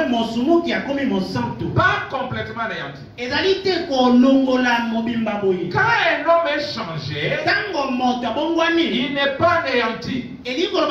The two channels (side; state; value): both; identical; correlation 1.00